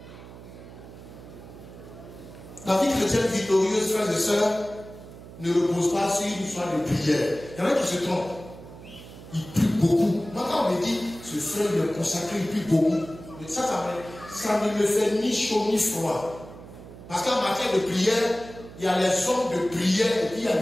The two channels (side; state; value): right; noise; hum, 16 dB below the sound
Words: La vie chrétienne victorieuse, frères et sœurs, ne repose pas sur une histoire de prière. Il y en a qui se trompent. Ils prient beaucoup. Moi, quand on me dit, ce frère il est consacré, il prie beaucoup. Mais ça ne me fait ni chaud ni froid. Parce qu'en matière de prière, il y a les hommes de prière et puis il y a